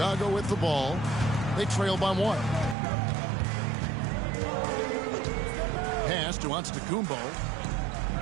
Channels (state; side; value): drops out; left; at 2.8 s